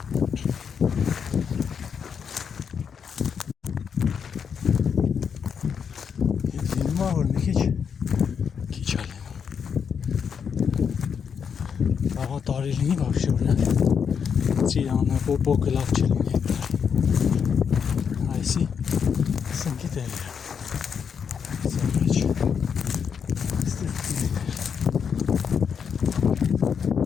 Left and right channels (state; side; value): quieter; right; 6.9 dB